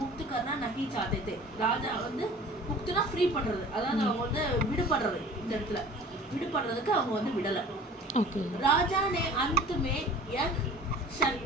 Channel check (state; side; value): normal; both; correlation 0.45